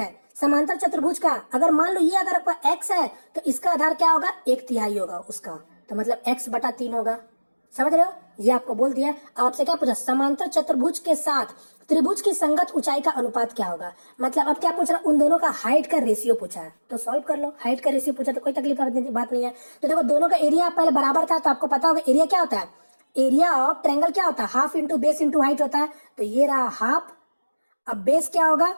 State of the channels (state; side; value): inverted; both; correlation -1.00